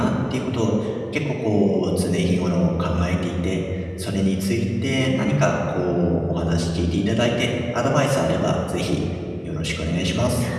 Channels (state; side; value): identical; both; correlation 1.00